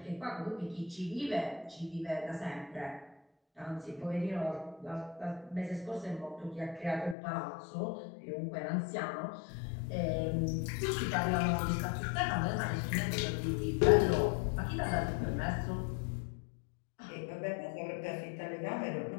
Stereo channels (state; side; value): drops out; right; at 7.2 s